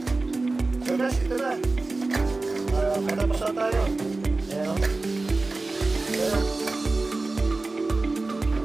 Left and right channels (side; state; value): left; quieter; 3.4 dB